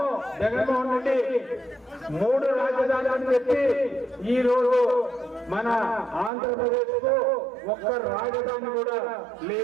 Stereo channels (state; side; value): drops out; left; at 6.3 s